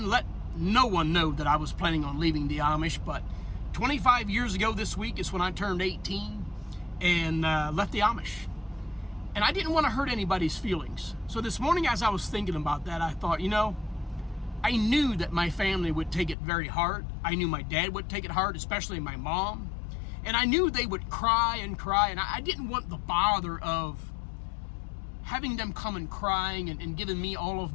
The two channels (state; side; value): drops out; right; at 16.4 s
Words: let no one know that I was planning on leaving the Amish, but 25 years ago this week is when I turned 18 and left the Amish. And I didn't want to hurt anybody's feelings. So this morning as I was thinking about that, I thought, I knew that my family would take it very hard. I knew my dad would take it hard, especially my mom. And I knew they would cry, and I didn't want the bother of having them come and crying and giving me all of